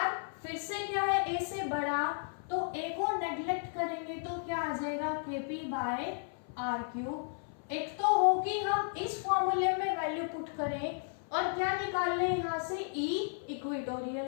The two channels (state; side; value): silent; right; 55 dB below the other